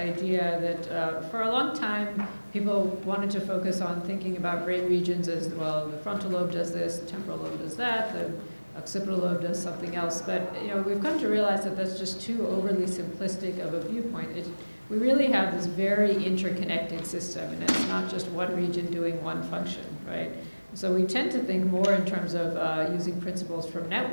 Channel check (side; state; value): both; inverted; correlation -1.00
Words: that for a long time, people wanted to focus on thinking about brain regions as, well, the frontal lobe does this, the temporal lobe does that, the occipital lobe does something else. But we've come to realize that that's just too overly simplistic of a viewpoint. We really have this very interconnected system, and it's not just one region doing one function, right? So we tend to think more in terms of using principles from